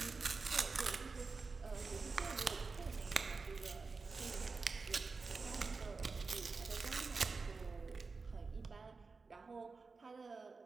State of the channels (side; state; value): left; quieter; 4.3 dB